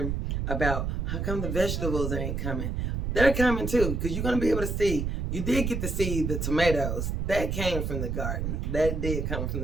about how come the vegetables ain't coming, they're coming too, because you're gonna be able to see. You did get to see the tomatoes. That came from the garden. That did come from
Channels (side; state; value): right; noise; rumble, 1 dB below the sound